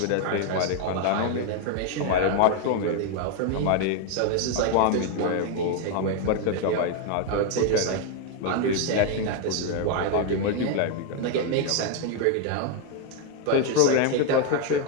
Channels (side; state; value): both; different; correlation 0.01